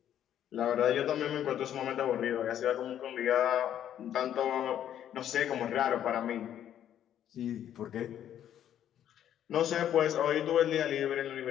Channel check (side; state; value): right; quieter; 10.5 dB